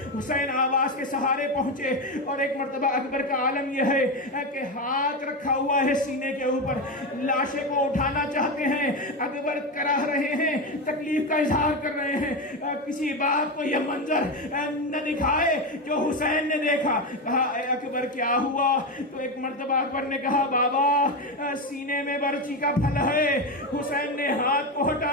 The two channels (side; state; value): both; normal; correlation 0.15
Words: حسین آواز کے سہارے پہنچے اور ایک مرتبہ اکبر کا عالم یہ ہے کہ ہاتھ رکھا ہوا ہے سینے کے اوپر، لاشے کو اٹھانا چاہتے ہیں، اکبر کراہ رہے ہیں، تکلیف کا اظہار کر رہے ہیں، کسی بات کو یہ منظر نہ دکھائے جو حسین نے دیکھا۔ کہا اے اکبر کیا ہوا؟ تو ایک مرتبہ اکبر نے کہا بابا سینے میں برچی کا پھل ہے۔ حسین نے ہاتھ کو